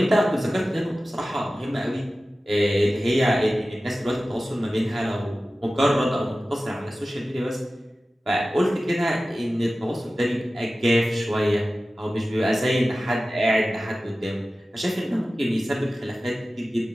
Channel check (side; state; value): both; normal; correlation 0.95